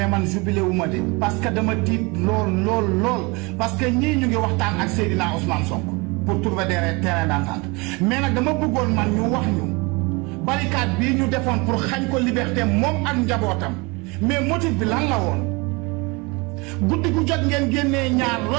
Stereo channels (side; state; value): left; quieter; 27.2 dB